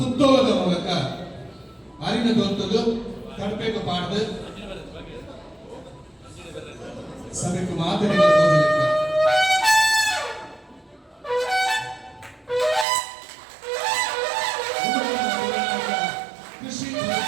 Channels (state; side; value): drops out; left; at 12.9 s